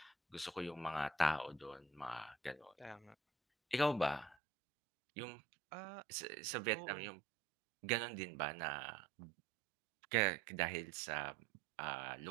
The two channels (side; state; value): left; drops out; at 4.4 s